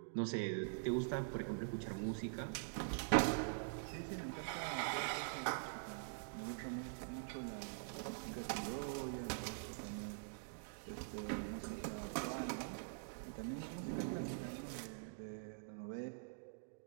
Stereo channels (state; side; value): silent; left; digital silence